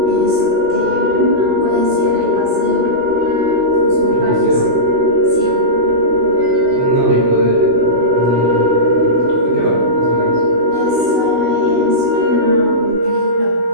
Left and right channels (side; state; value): left; late; 16 ms